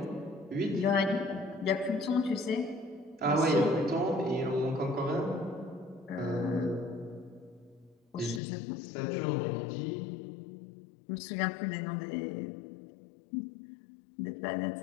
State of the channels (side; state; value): right; drops out; at 8.4 s